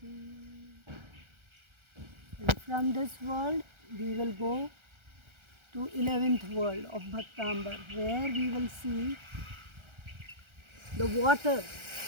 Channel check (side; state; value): left; late; 1.3 ms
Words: And from this world we will go to 11th world of Bhaktambar, where we will see the water